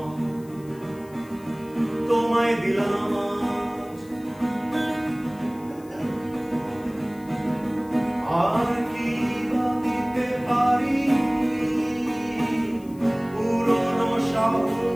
তোমায় দিলাম আজ। আর কি বা দিতে পারি পুরনো শহর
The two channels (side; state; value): left; noise; hiss, 26 dB below the sound